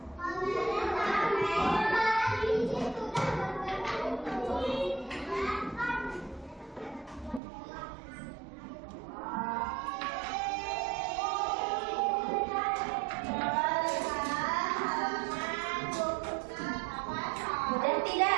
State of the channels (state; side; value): drops out; left; at 7.4 s